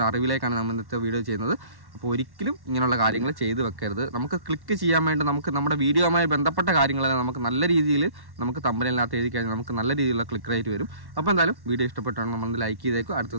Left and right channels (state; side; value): late; left; 1.1 ms